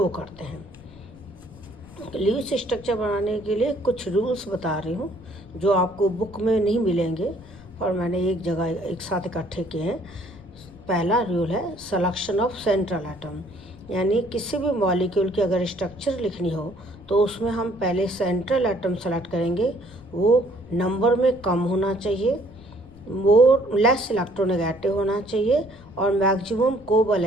करते हैं। लुईस स्ट्रक्चर बनाने के लिए कुछ रूल्स बता रही हूँ जो आपको बुक में नहीं मिलेंगे और मैंने एक जगह एक साथ इकट्ठे किए हैं। पहला रूल है सिलेक्शन ऑफ सेंट्रल एटम, यानी किसी भी मॉलिक्यूल की अगर स्ट्रक्चर लिखनी हो तो उसमें हम पहले सेंट्रल एटम सेलेक्ट करेंगे। वो नंबर में कम होना चाहिए, वो लेस इलेक्ट्रोनेगेटिव होना चाहिए और मैक्सिमम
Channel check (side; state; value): left; noise; rumble, 22 dB below the sound